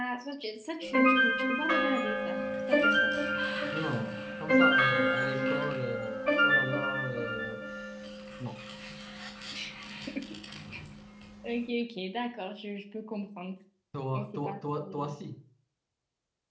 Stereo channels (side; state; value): both; identical; correlation 1.00